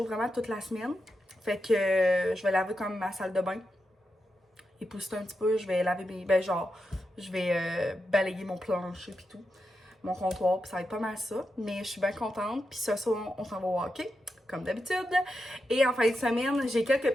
vraiment toute la semaine. Fait que je vais laver comme ma salle de bain. Épousseter un petit peu. Je vais laver mes... je vais balayer mon plancher pis tout. Mon comptoir. Puis ça va être pas mal ça. Mais je suis bien contente. Puis ce soir, on s'en va au hockey. Comme d'habitude. Et en fin de semaine, j'ai quelques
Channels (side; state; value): both; normal; correlation 0.87